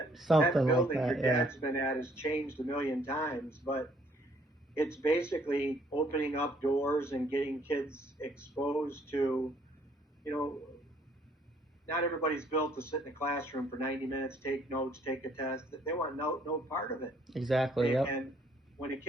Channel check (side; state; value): both; normal; correlation 0.64